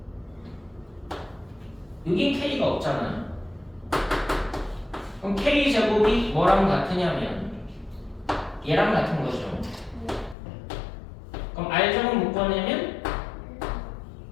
여긴 K가 없잖아. 그럼 K제곱이 뭐랑 같으냐면 얘랑 같은 거죠. 그럼 R제곱 묶어내면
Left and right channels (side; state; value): right; drops out; at 10.4 s